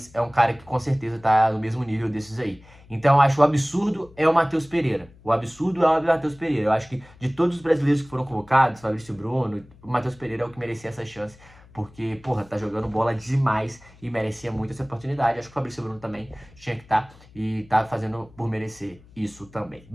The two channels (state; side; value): noise; left; hum, 25 dB below the sound